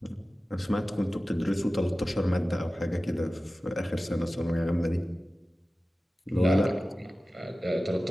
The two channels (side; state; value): both; normal; correlation 0.96